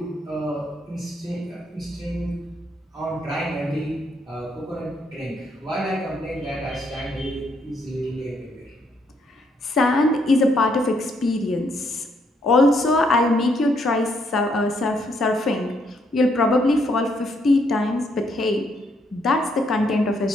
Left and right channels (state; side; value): normal; both; correlation 0.73